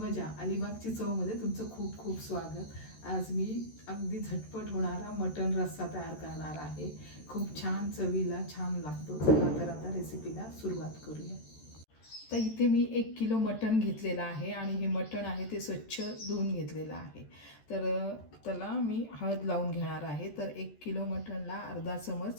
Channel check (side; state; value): right; late; 13 ms